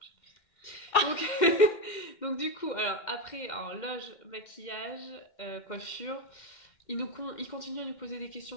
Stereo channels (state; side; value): late; right; 2.1 ms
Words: Donc du coup, alors après, loge, maquillage, coiffure, il continue à nous poser des